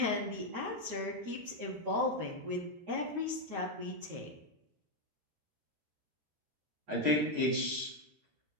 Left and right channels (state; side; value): late; left; 13 ms